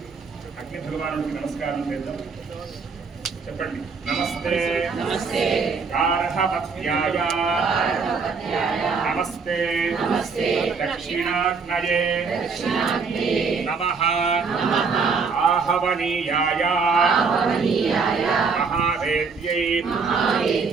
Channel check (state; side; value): quieter; left; 5.1 dB